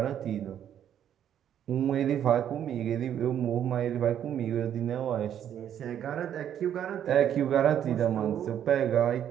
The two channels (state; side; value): quieter; left; 9.9 dB